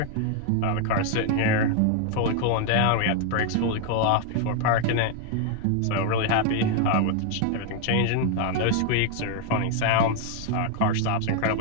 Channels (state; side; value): different; both; correlation 0.00